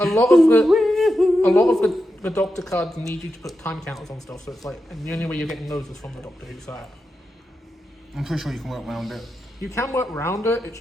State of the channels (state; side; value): normal; both; correlation 0.89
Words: lot of the Doctor cards need you to put time counters on stuff. So it's like, and the only way you're getting those is from the Doctor Who side. I'm pretty sure you can work around it. You can work around it. It's